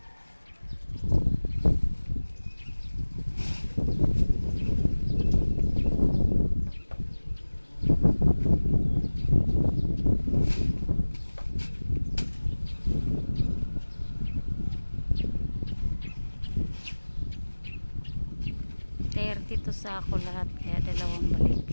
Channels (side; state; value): both; inverted; correlation -1.00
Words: Dito sa ako lahat, kaya